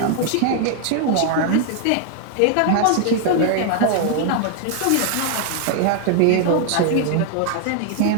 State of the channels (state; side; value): different; both; correlation 0.00